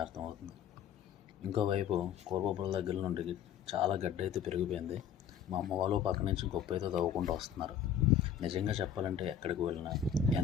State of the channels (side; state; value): right; quieter; 8.8 dB